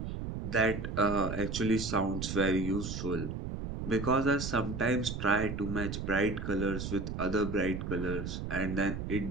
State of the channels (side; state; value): right; noise; rumble, 5 dB below the sound